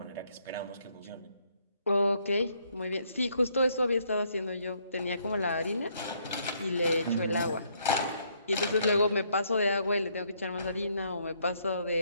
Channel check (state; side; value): inverted; both; correlation -0.70